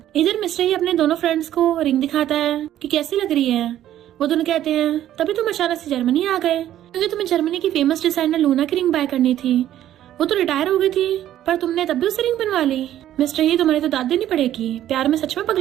इधर मिस्टर ही अपने दोनों फ्रेंड्स को रिंग दिखाता है कि कैसी लग रही है। वो दोनों कहते हैं तभी तुम अचानक से जर्मनी आ गए क्योंकि तुम्हें जर्मनी की फेमस डिजाइनर लूना की रिंग बाय करनी थी। वो तो रिटायर हो गई थी पर तुमने तब भी उससे रिंग बनवा ली। मिस्टर ही तुम्हारी तो दाद देनी पड़ेगी, प्यार में सच में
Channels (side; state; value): left; quieter; 12.2 dB